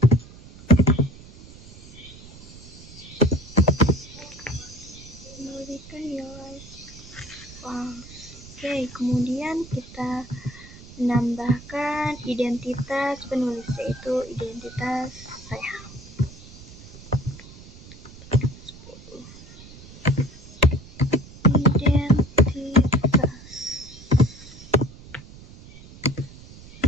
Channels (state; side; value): noise; right; rumble, 18 dB below the sound